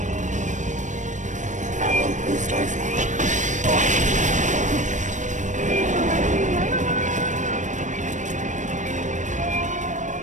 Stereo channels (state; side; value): late; left; 0.35 ms